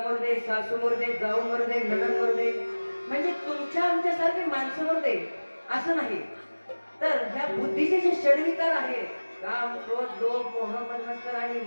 मरदे सासू मरदे जाऊ मरदे नणंद मरदे म्हणजे तुमच्या आमच्यासारखे माणसं मरदे असं नाही तर ह्या बुद्धीचे जे षडविकार आहे काम क्रोध लोभ मोह मन्मत्सर आणि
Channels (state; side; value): inverted; both; correlation -1.00